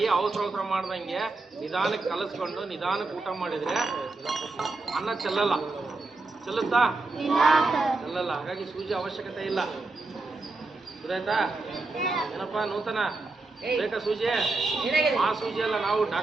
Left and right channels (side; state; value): left; quieter; 3.5 dB